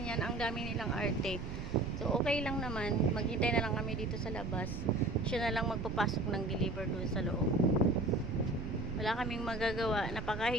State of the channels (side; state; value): right; noise; rumble, 7 dB below the sound